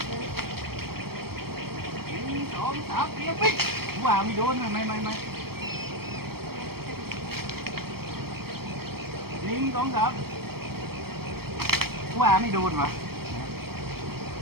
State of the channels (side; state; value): left; late; 0.95 ms